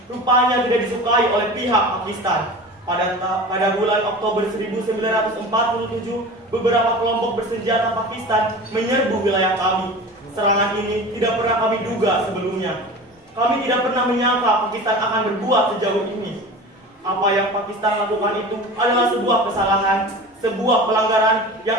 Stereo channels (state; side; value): normal; both; correlation 0.35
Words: rupanya tidak disukai oleh pihak Pakistan. Pada bulan Oktober 1947, beberapa kelompok bersenjata Pakistan menyerbu wilayah kami. Serangan ini tidak pernah kami duga sebelumnya. Kami tidak pernah menyangka Pakistan akan berbuat sejauh ini. Apa yang Pakistan lakukan itu adalah sebuah kesalahan, sebuah pelanggaran yang